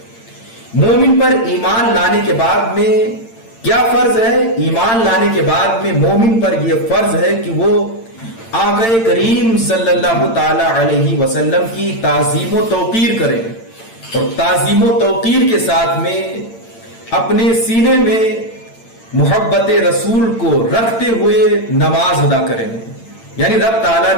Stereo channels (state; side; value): late; right; 8.8 ms